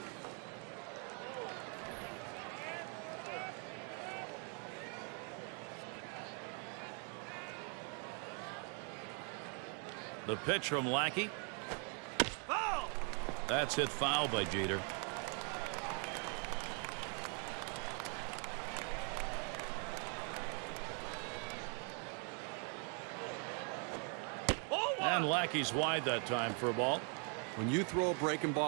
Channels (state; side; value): quieter; left; 39.4 dB